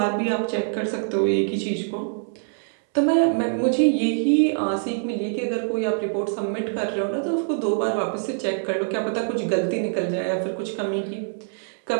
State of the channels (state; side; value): silent; left; 62 dB below the other